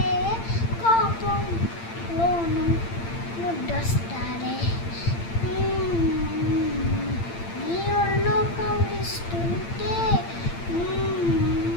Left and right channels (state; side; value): late; right; 8.8 ms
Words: కోపంలోను ముద్దొస్తాలే, నీ ఒళ్ళో కవ్విస్తుంటే